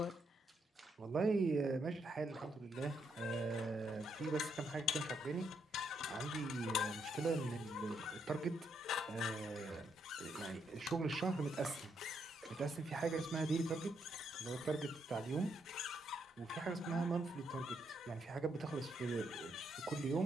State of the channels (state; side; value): normal; both; correlation 0.77